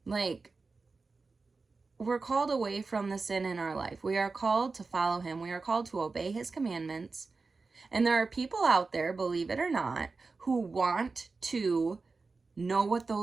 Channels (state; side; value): quieter; left; 4.1 dB